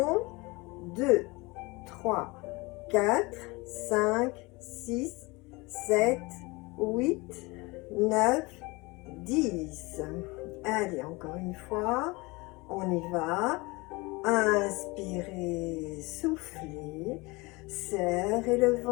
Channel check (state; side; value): quieter; right; 24.6 dB